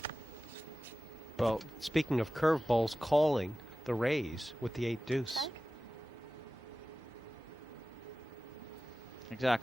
Well, speaking of curveballs, calling the raise with the 8 deuce.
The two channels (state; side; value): normal; both; correlation 0.95